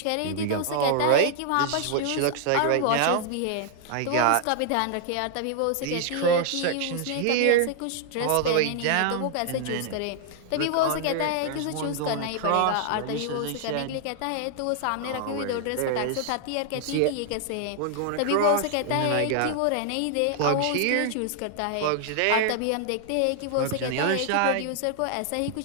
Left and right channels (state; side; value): different; both; correlation 0.00